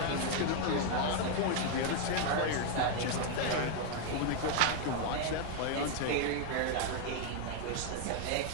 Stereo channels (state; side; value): different; both; correlation 0.00